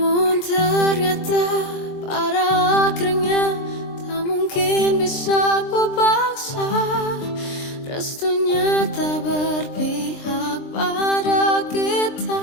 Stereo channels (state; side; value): late; right; 23 ms